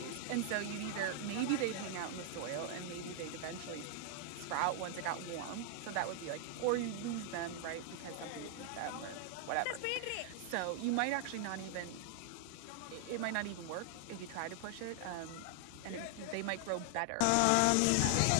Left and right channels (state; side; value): different; both; correlation 0.00